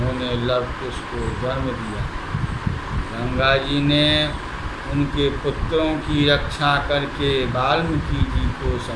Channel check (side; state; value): both; identical; correlation 1.00